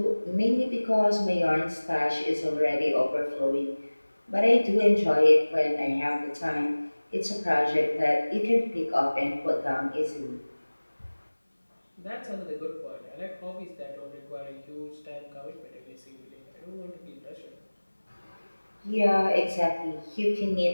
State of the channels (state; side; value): inverted; both; correlation -1.00